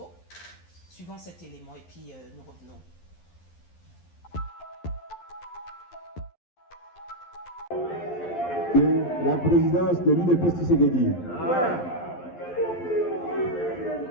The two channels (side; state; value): right; late; 11 ms